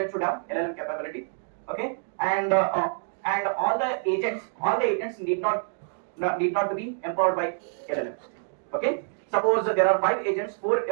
should have LLM capability. Okay, and all the agents need not to be empowered by LLMs. Okay, suppose there are 5 agents,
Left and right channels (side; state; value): left; silent; digital silence